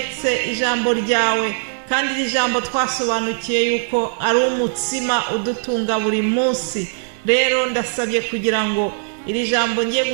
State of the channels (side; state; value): left; silent; 66 dB below the other